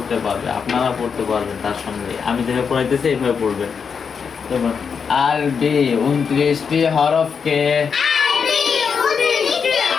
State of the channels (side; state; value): right; quieter; 6.2 dB